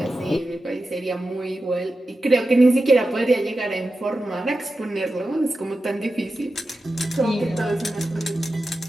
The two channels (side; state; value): both; normal; correlation 0.92